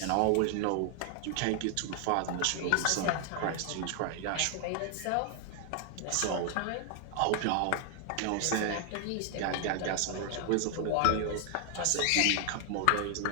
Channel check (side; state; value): both; different; correlation 0.00